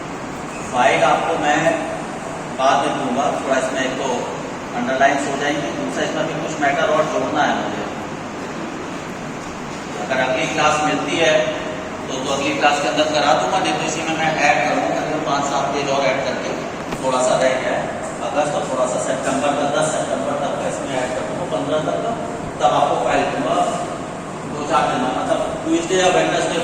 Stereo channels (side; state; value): both; identical; correlation 1.00